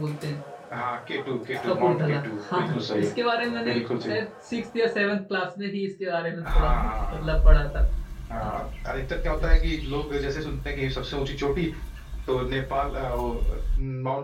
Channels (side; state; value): both; identical; correlation 1.00